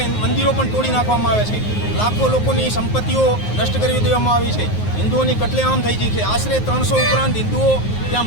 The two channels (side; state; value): right; late; 9.5 ms